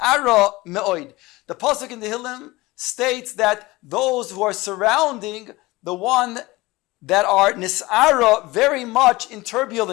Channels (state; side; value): quieter; right; 20.8 dB